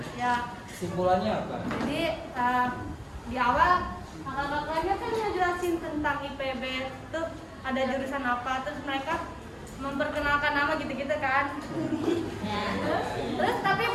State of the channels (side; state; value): both; identical; correlation 1.00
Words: Ya. Kesimpulannya apa? Jadi di awal kakak-kakaknya kan ngejelasin tentang IPB tuh ada jurusan apa, terus mereka memperkenalkan nama gitu-gitu kan. Terus tapi